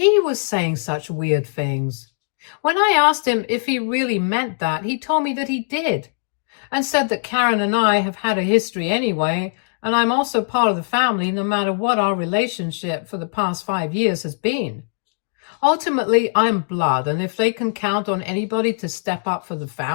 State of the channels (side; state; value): right; silent; digital silence